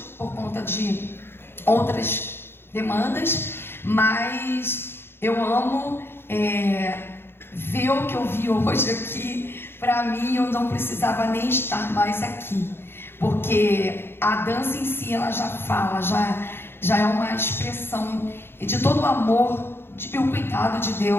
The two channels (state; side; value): late; right; 0.11 ms